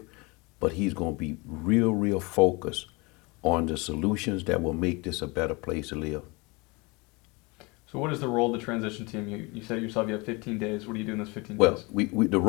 but he's going to be real focused on the solutions that will make this a better place to live. So what is the role of the transition team? You said yourself you have 15 days. What do you do in those 15 days? Well, the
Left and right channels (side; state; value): right; quieter; 27.0 dB